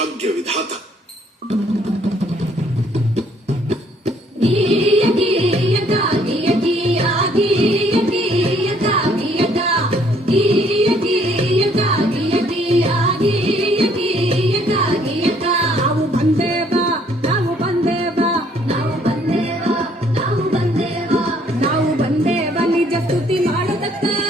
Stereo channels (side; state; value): both; normal; correlation 0.64